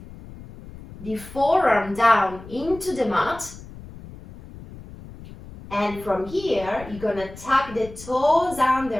the forearm down into the mat. And from here, you're going to tuck the toes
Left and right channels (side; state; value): left; noise; rumble, 16 dB below the sound